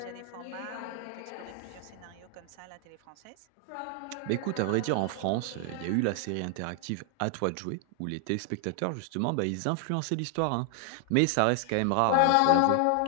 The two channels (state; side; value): different; both; correlation 0.00